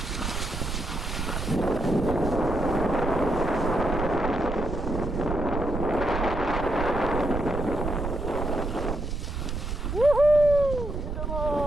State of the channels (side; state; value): right; noise; rumble, 4 dB below the sound